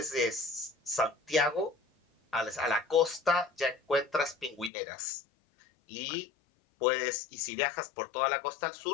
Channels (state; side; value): drops out; right; at 4.7 s